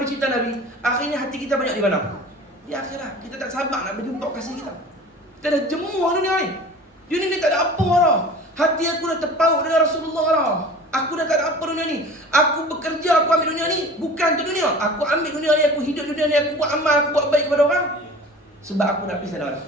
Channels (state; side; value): normal; both; correlation 0.42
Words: cinta Nabi, akhirnya hati kita banyak di mana? Di akhirat. Kita tak sabar nak berjumpa kasih kita. Kita dah jemuh dunia ni. Dunia ni tak ada apa dah. Hati aku dah terpaut dengan Rasulullah dah. Aku dah tak ada apa dunia ni. Aku bekerja, aku ambil dunia ni bukan untuk dunia. Aku ambil dunia ni, aku hidup dunia ni, aku buat amal, aku buat baik kepada orang. Sebab aku nak pisah dah.